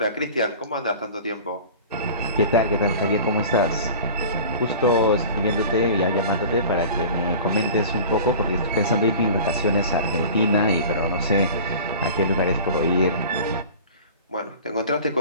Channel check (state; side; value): inverted; both; correlation -0.40